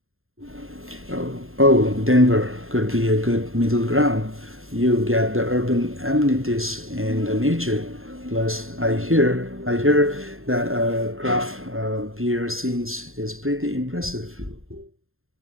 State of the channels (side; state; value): left; late; 0.61 ms